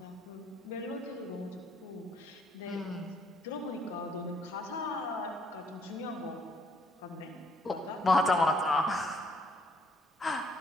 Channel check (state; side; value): normal; both; correlation 0.67